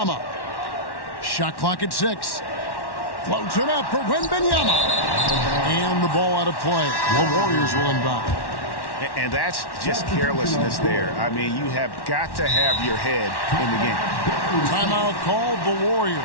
Shot clock at 6. Floats it up for Wembanyama. And the ball out of play. The Warriors will inbound. And that's just carelessness there. I mean, you have got to have your head in the game. Timeout called the Warriors.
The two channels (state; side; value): late; right; 1.1 ms